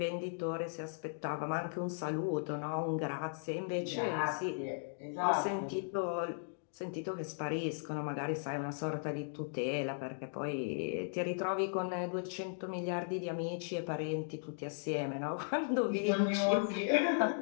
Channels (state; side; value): silent; right; digital silence